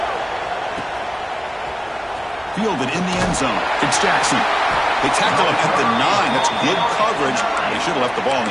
Fielded in the end zone. It's Jackson. They tackle him at the 9. That's good coverage. They should have left the ball in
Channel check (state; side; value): identical; both; correlation 1.00